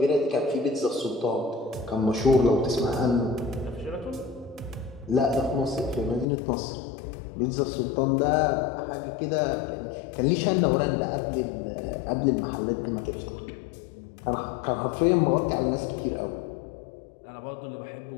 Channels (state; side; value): drops out; right; at 6.2 s